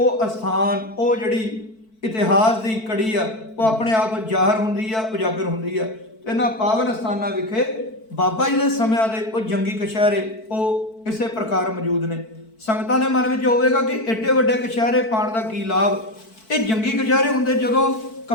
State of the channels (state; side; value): late; right; 4.5 ms